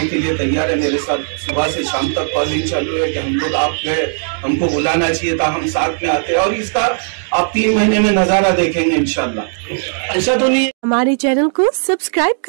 के लिए तैयार है मेरे साथ। सुबह से शाम तक कॉलिंग चालू है कि हम लोग आप गए, हमको बुलाना चाहिए था, हम साथ में आते हैं। और इसका आप 3 महीने में नजारा देखेंगे इंशाल्लाह। ऐसा तो नहीं। हमारे चैनल को सब्सक्राइब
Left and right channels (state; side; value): silent; left; digital silence